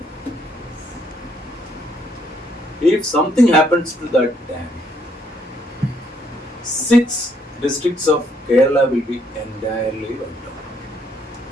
If something happens to that dam, 6 districts of Kerala will be entirely wiped out.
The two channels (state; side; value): normal; both; correlation 0.70